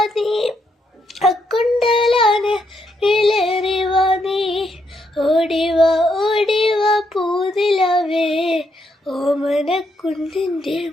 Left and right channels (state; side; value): normal; both; correlation 0.77